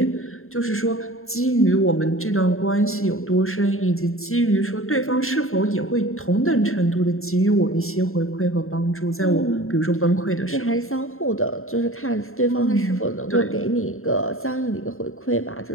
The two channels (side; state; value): right; late; 0.61 ms